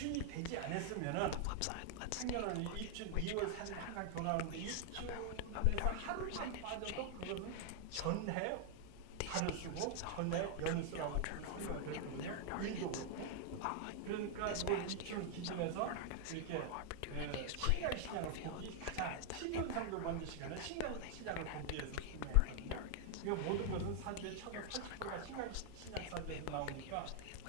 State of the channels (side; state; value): both; different; correlation 0.00